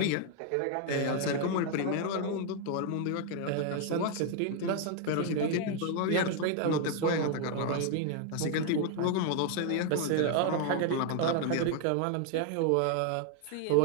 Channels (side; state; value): both; different; correlation 0.00